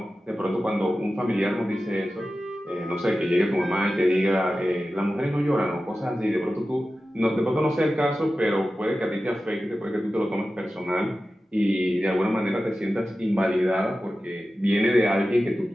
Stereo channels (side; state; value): both; normal; correlation 0.94